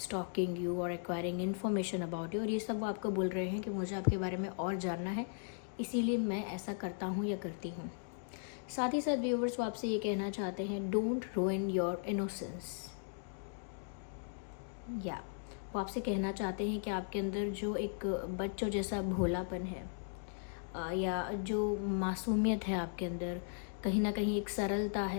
you or acquiring information about you। और ये सब वो आपको बोल रहे हैं कि मुझे आपके बारे में और जानना है, इसीलिए मैं ऐसा करता हूँ या करती हूँ। साथ ही साथ व्यूअर्स वो आपसे ये कहना चाहते हैं, डोंट ruin योर इनोसेंस। या वो आपसे कहना चाहते हैं कि आपके अंदर जो एक बच्चों जैसा भोलापन है या जो मासूमियत है आपके अंदर, कहीं ना कहीं एक सरलता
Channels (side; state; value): right; silent; digital silence